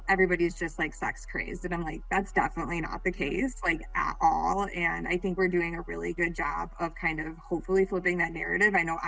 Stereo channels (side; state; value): both; identical; correlation 1.00